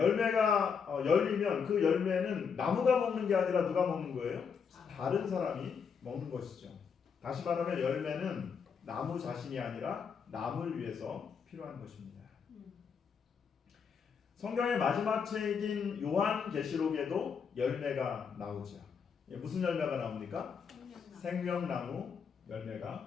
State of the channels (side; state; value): right; quieter; 6.3 dB